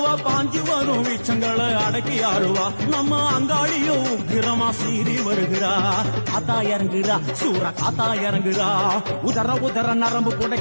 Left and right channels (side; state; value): both; inverted; correlation -1.00